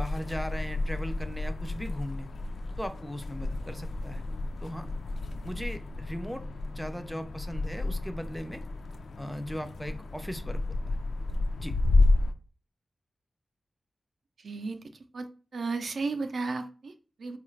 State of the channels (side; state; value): both; normal; correlation 0.95